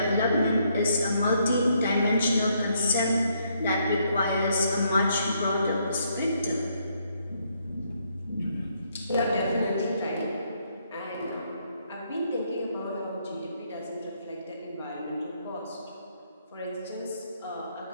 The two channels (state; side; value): inverted; both; correlation -0.73